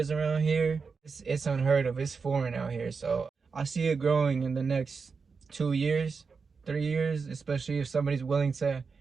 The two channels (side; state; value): left; quieter; 5.1 dB